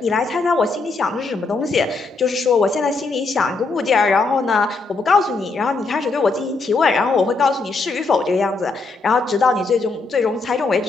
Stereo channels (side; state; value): right; quieter; 3.8 dB